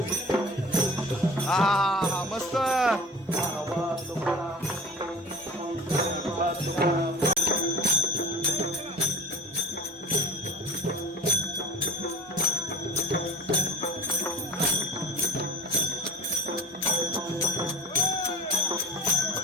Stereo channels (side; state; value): both; normal; correlation 0.38